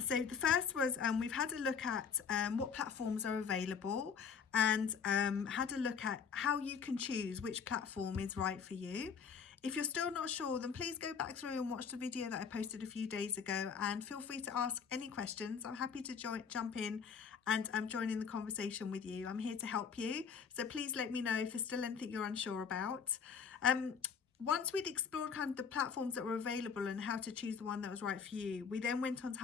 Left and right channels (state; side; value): quieter; right; 6.5 dB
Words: the first was we've had a look at what platforms are available and had a look at how you can choose which platform is right for you. If you're still not sure, then please go back through and watch the video that I posted a few days ago, and feel free to ask any questions. I'm happy to jump in and join in the conversation with you. I'm here to help you, so please let me know if there's still anything you're unsure about. Once we'd explored kind of the platforms that were available and how to choose the one that was right for you, we then went on to